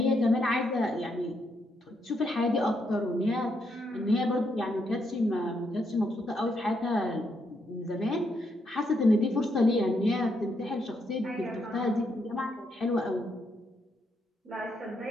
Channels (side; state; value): both; normal; correlation 0.77